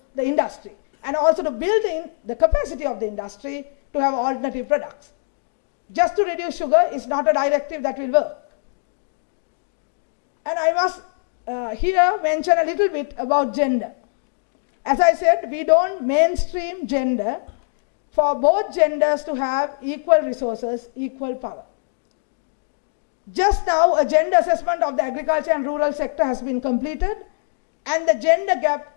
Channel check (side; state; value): right; silent; digital silence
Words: the industry, and also to building the capacity of the industry to have alternative products. Just to reduce sugar is not a directive that will work. And I must here mention a little bit about gender. As I said, we don't mainstream gender for both genders to have equal resources, equal power. Just now, a gender assessment of the agriculture and rural sector has been completed, and the gender gap